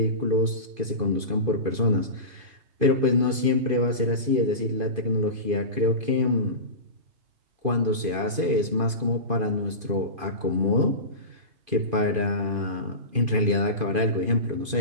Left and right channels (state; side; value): late; left; 2.5 ms